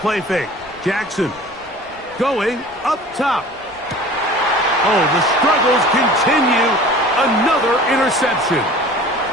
fake. Jackson going up top. Oh, the struggles continue Another interception.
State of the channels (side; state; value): both; normal; correlation 0.43